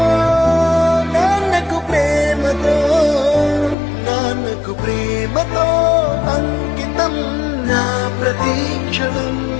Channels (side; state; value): right; drops out; at 3.8 s